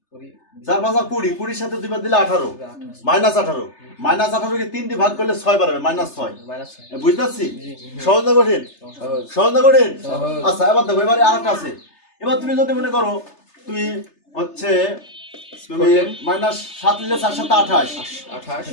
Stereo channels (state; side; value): late; right; 3.3 ms